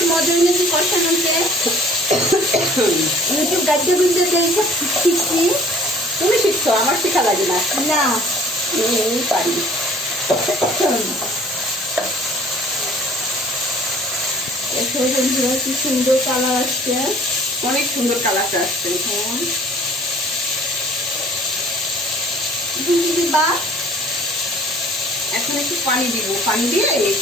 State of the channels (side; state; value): both; normal; correlation 0.52